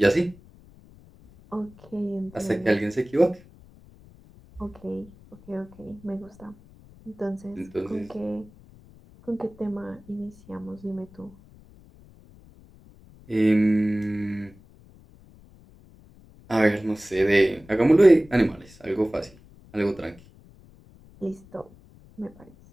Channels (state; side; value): noise; left; rumble, 24 dB below the sound